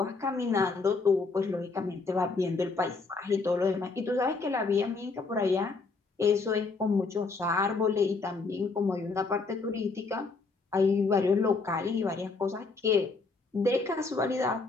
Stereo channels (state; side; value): quieter; right; 4.1 dB